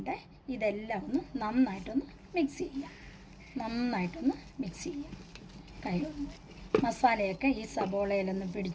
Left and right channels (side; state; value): both; identical; correlation 1.00